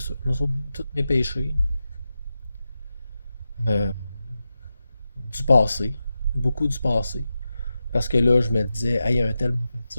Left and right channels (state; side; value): inverted; both; correlation -0.91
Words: Il m'a sauvé de tous mes péchés. euh, du passé. Beaucoup du passé. Parce que là, je me disais, hey, il y a un tel m'a fait